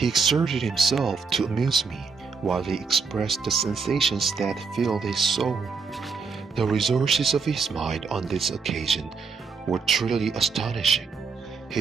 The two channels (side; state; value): left; quieter; 5.0 dB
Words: exerted himself to amuse me, while he expressed the sensations that filled his soul. The resources of his mind on this occasion were truly astonishing.